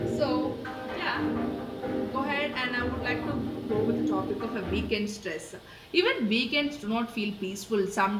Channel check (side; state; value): both; identical; correlation 1.00